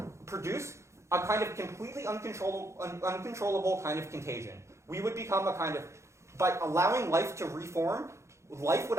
produce a kind of completely uncontrollable kind of contagion. We would become a kind of, by allowing life to reform, life would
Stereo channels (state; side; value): late; left; 0.14 ms